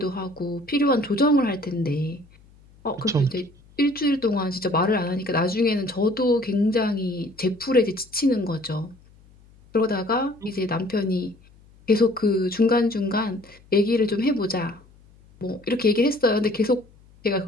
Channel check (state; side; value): noise; left; hum, 27 dB below the sound